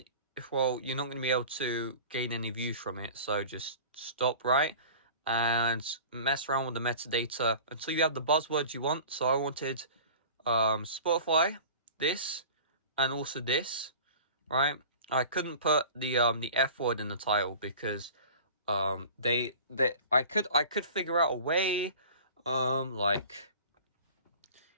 you're not going to be able to gain any views from it, so just stop, right? And mess around with the metadata until you have the buzzwords you want. So I wanted Spotify, this, and also this, right? I couldn't put the F word in the title because I could figure out a way,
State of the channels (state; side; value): inverted; both; correlation -0.41